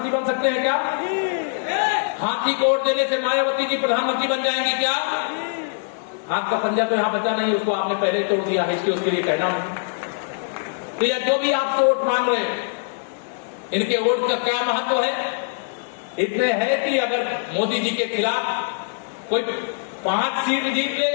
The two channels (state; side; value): silent; right; digital silence